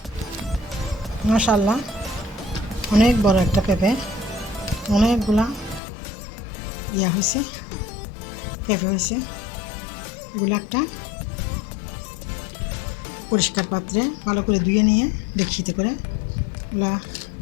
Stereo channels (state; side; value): drops out; right; at 5.8 s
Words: মাশাআল্লাহ, অনেক বড় একটা পেঁপে, অনেকগুলা হয়েছে, পেঁপে হয়েছে। এগুলো একটা পরিষ্কার পাত্রে ভালো করে ধুয়ে নিয়ে ডেকচিতে করে এগুলা